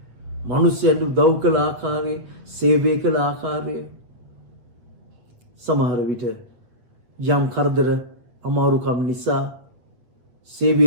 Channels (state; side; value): late; left; 8.2 ms